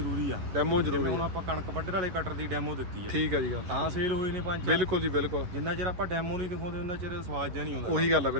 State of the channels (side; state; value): left; late; 11 ms